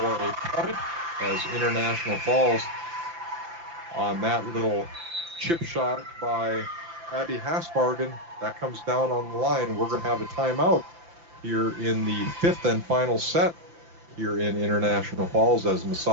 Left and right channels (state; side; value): late; left; 5.9 ms